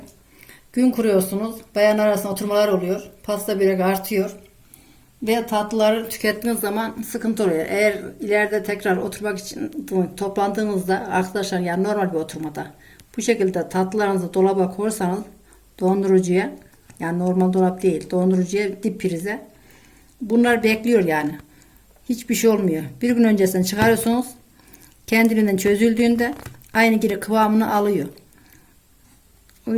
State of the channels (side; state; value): both; identical; correlation 1.00